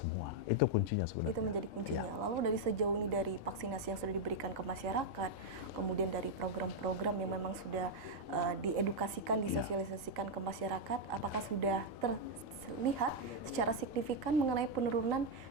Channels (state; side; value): normal; both; correlation 0.00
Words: Itu kuncinya sebenarnya. Itu menjadi kuncinya. Lalu dari sejauh ini, dari vaksinasi yang sudah diberikan ke masyarakat, kemudian dari program-program yang memang sudah diedukasikan, disosialisasikan ke masyarakat, apakah sudah terlihat secara signifikan mengenai penurunan